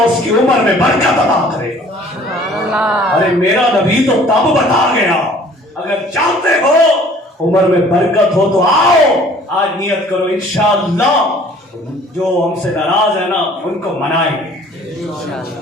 کی عمر میں برکت عطا کرے گا۔ ارے میرا نبی تو تب بتا گیا، اگر چاہتے ہو عمر میں برکت ہو تو آؤ، آج نیت کرو انشاءاللہ جو ہم سے ناراض ہے نا ان کو منائیں گے۔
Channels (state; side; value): normal; both; correlation 0.53